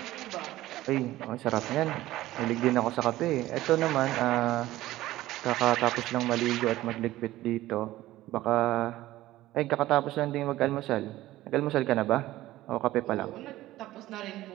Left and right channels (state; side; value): quieter; left; 16.0 dB